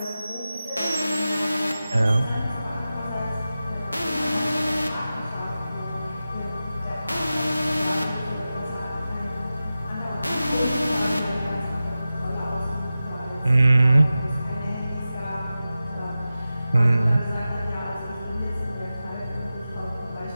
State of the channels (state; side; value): inverted; both; correlation -0.94